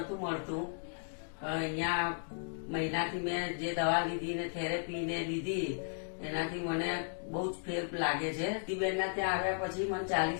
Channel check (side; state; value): right; silent; digital silence